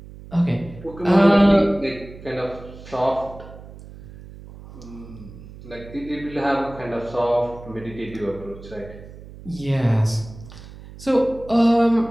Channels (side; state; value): right; noise; hum, 17 dB below the sound